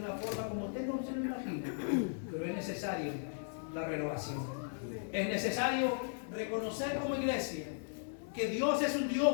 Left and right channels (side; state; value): right; silent; digital silence